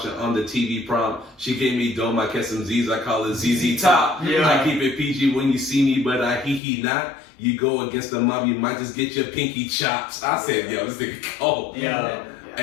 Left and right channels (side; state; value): right; drops out; at 6.6 s